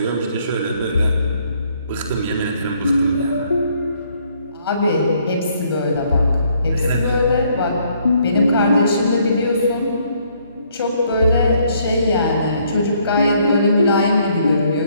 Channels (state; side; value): inverted; both; correlation -0.68